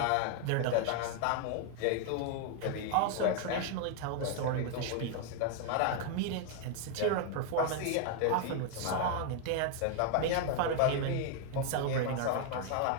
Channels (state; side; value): different; both; correlation 0.00